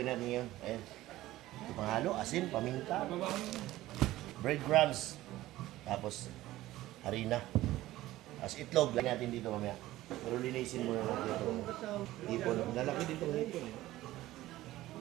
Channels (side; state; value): left; quieter; 16.1 dB